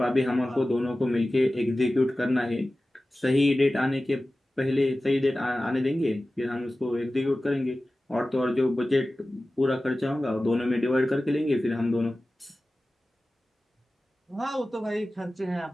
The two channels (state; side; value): normal; both; correlation 0.96